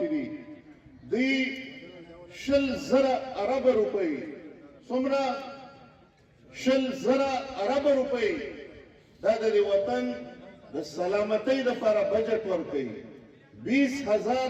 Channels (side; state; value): both; identical; correlation 1.00